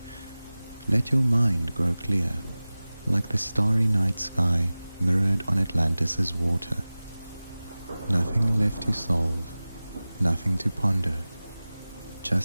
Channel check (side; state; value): both; inverted; correlation -0.98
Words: Let your mind grow clear, like the starry night sky mirrored on Atlantis's water. Nothing left to solve, nothing to ponder,